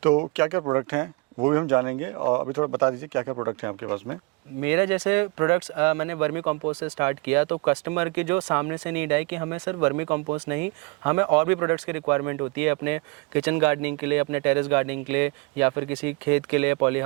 तो क्या क्या प्रोडक्ट हैं वो भी हम जानेंगे, और अभी थोड़ा बता दीजिए क्या क्या प्रोडक्ट हैं आपके पास में। मेरा जैसे प्रोडक्ट्स मैंने वर्मी कंपोस्ट से स्टार्ट किया, तो कस्टमर की जो सामने से नीड आई कि हमें सिर्फ वर्मी कंपोस्ट नहीं, हमें और भी प्रोडक्ट्स की रिक्वायरमेंट होती है अपने किचन गार्डनिंग के लिए, अपने टेरेस गार्डनिंग के लिए, या फिर किसी खेत के लिए, पॉली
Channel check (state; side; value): quieter; left; 28.2 dB